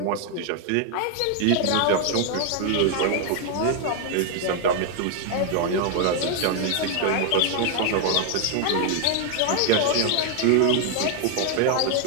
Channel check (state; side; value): different; both; correlation 0.00